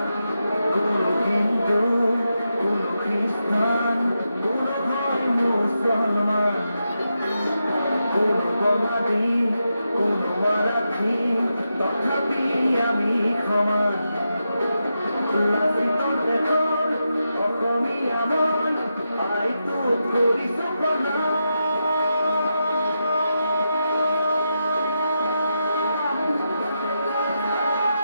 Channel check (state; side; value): inverted; both; correlation -0.87